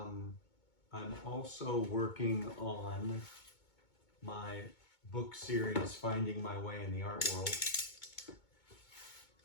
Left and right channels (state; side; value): late; right; 2.2 ms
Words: also working on my book series, Finding My Way in the Art World,